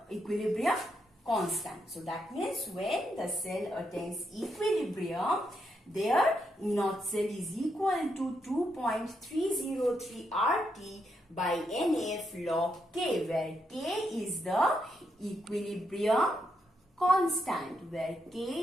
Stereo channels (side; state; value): both; normal; correlation 0.80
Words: equilibrium constant. So that means when the cell attains equilibrium, their E naught cell is equal to 2.303 RT by NF log K, where K is the equilibrium constant, where K